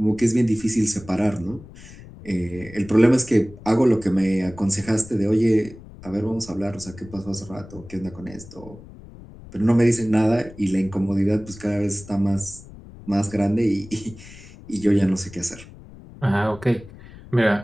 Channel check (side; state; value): left; noise; rumble, 18 dB below the sound